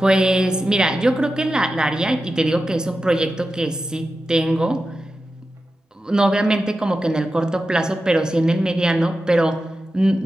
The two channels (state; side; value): normal; both; correlation 0.92